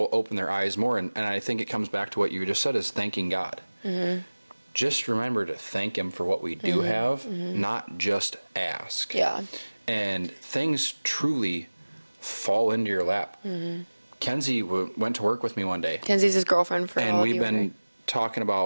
open their eyes more. And I think it comes back to what you just said, is thanking God. Just remember to thank Him for what we do have, not just ask. Yeah. And things truly fall into your lap. Kenzie went to work with me one day, Kenzie's his girlfriend for and all we've you been talking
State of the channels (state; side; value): inverted; both; correlation -1.00